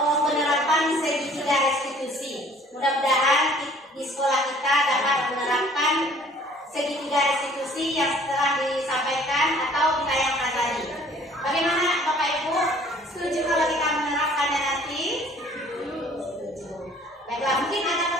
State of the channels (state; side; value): normal; both; correlation 0.54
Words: penerapan segitiga restitusi. Mudah-mudahan di sekolah kita dapat menerapkan segitiga restitusi yang telah disampaikan atau ditayangkan tadi. Bagaimana Bapak Ibu? Setuju kalau kita menerapkannya nanti? Setuju. Baiklah, mungkin ada